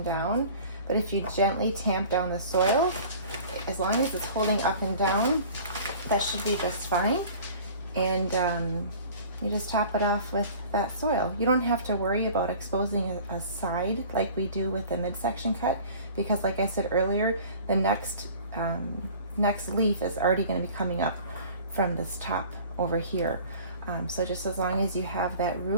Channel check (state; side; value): inverted; both; correlation -0.45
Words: down. But if you gently tamp down the soil, as long as it's holding up and down, that should be just fine. And you just top it off with that soil. You don't have to worry about exposing a side like we do with the midsection cut, because like I said earlier, the next leaf is already going to be coming up from this top over here. So just as long as you have that